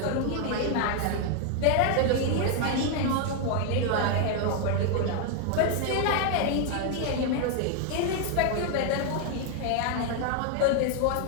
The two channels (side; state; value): both; different; correlation 0.00